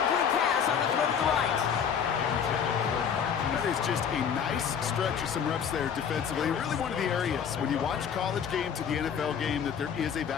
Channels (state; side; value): quieter; right; 7.5 dB